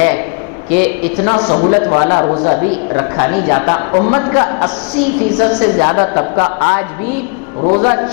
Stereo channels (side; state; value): right; quieter; 36.7 dB